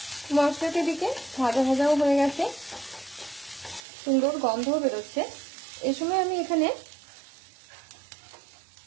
মশলা একটা দিকে ভাজা ভাজাও হয়ে গেছে, সুন্দর গন্ধও বেরোচ্ছে। এই সময় আমি এখানে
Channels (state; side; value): drops out; left; at 3.8 s